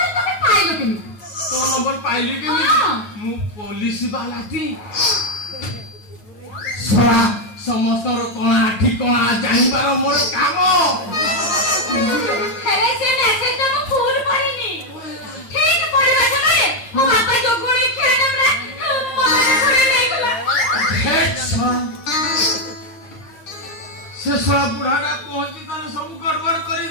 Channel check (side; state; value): right; late; 9.5 ms